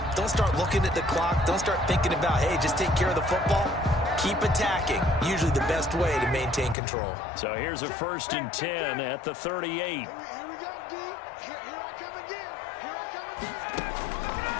Don't start looking at the clock. Don't start thinking about, hey, just take care of the football. Keep attacking. Usually the best way to maintain control. So here's a 1st and 10 at the 38. Here we go, D. Here I come again. Here I come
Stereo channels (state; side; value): drops out; right; at 6.8 s